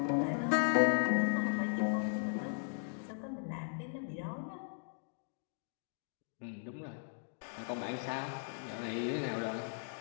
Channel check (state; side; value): silent; right; digital silence